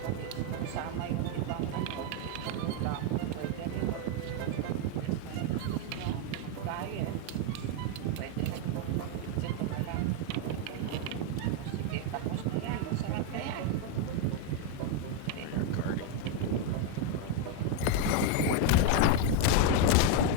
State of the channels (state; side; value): different; both; correlation 0.01